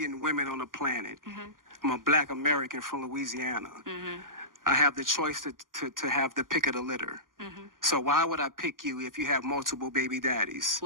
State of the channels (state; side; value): late; left; 0.90 ms